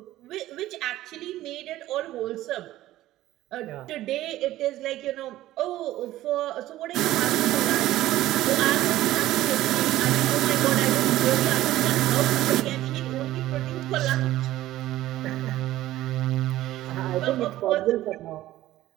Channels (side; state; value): left; quieter; 15.1 dB